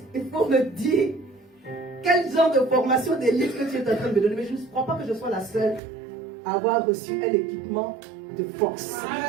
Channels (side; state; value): left; drops out; at 5.8 s